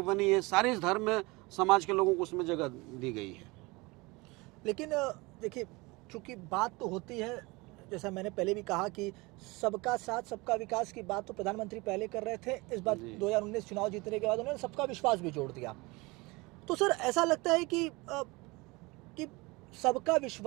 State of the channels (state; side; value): quieter; left; 24.3 dB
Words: बनी है, सारे धर्म समाज के लोगों को उसमें जगह दी गई है। लेकिन देखिए, चूंकि बात तो होती है, जैसा मैंने पहले भी कहा कि सबका साथ सबका विकास की बात तो प्रधानमंत्री पहले कर रहे थे। इस बार 2019 चुनाव जीतने के बाद उन्होंने सबका विश्वास भी जोड़ दिया। तो सर ऐसा लगता है कि सबका